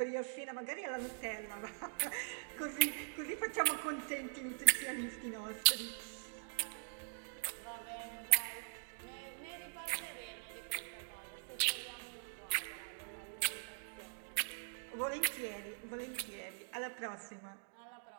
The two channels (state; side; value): silent; left; digital silence